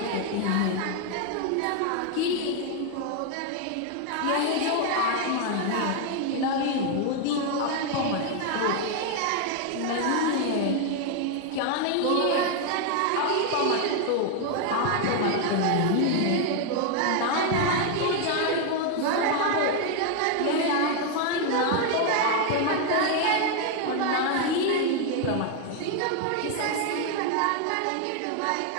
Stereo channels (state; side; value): different; both; correlation 0.01